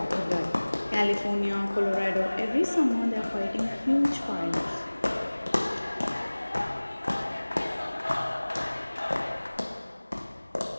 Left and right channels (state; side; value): inverted; both; correlation -1.00